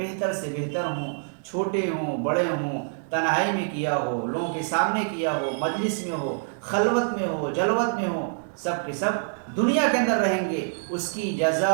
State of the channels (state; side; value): silent; left; 61 dB below the other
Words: سے بہتر ہوں، چھوٹے ہوں، بڑے ہوں، تنہائی میں کیا ہو، لوگوں کے سامنے کیا ہو، مجلس میں ہو، خلوت میں ہو، جلوت میں ہو، سب کے سب دنیا کے اندر رہیں گے، اس کی